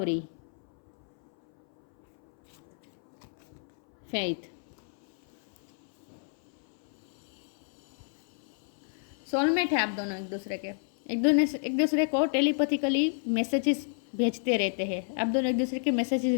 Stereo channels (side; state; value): right; silent; 58 dB below the other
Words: फेथ, सोलमेट है आप दोनों एक दूसरे को टेलीपैथिकली मैसेजेस भेजते रहते हैं, आप दोनों एक दूसरे के मैसेजेस